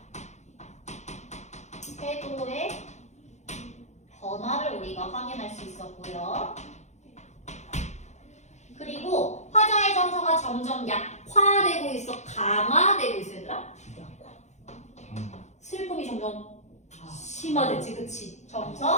태도의 변화를 우리가 확인할 수 있었고요. 그리고 화자의 정서가 점점 약화되고 있어? 강화되고 있어, 얘들아? 슬픔이 점점 심화됐지, 그치?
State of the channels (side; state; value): right; late; 0.33 ms